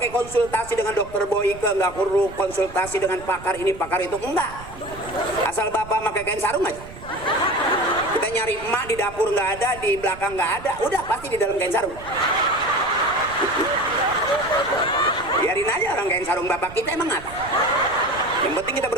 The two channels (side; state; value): right; noise; rumble, 16 dB below the sound